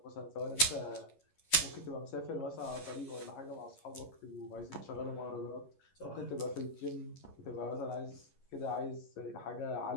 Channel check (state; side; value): late; right; 11 ms